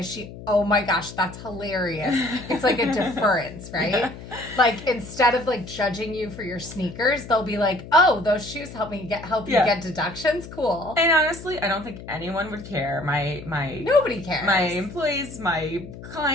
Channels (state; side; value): noise; left; hum, 14 dB below the sound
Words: she? Oh my gosh, that's hilarious. It's like a deference, right? Yeah. Like, instead of like judging you for your sneakers, they'll be like, oh, those shoes help you get deductions. Cool. And honestly, I don't think anyone would care. Nobody cares. My employees, my